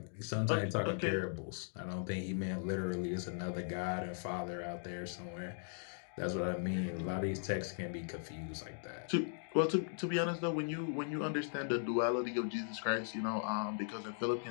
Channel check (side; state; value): right; silent; digital silence